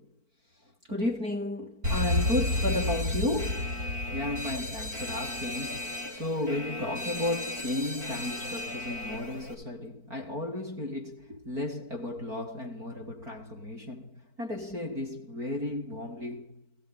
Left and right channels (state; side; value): late; left; 4.5 ms